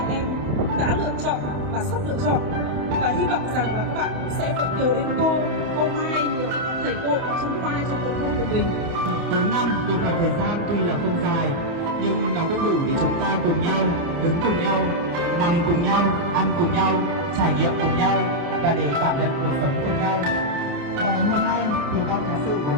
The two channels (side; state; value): left; late; 29 ms